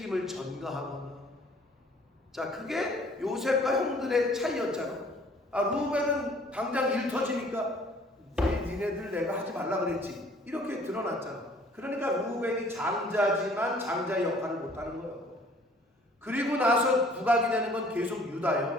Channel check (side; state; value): both; normal; correlation 0.55